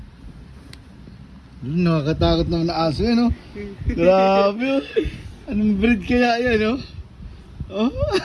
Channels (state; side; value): identical; both; correlation 1.00